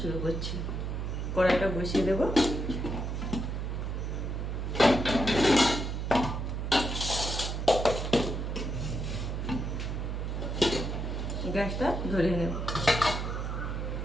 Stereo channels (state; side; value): noise; right; hum, 3 dB below the sound